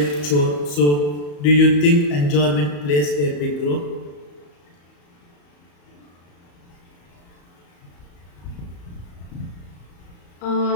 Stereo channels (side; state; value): right; late; 34 ms